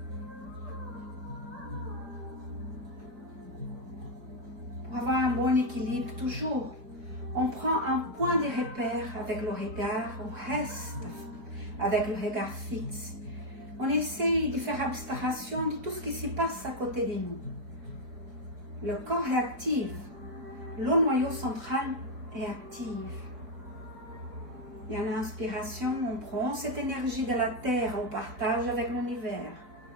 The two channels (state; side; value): late; left; 4.3 ms